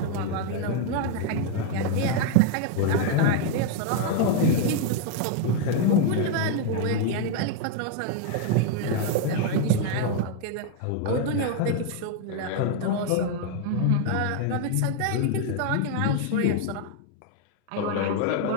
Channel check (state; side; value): different; both; correlation 0.00